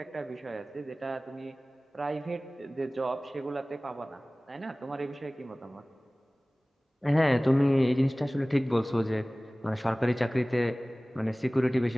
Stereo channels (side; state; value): both; normal; correlation 0.98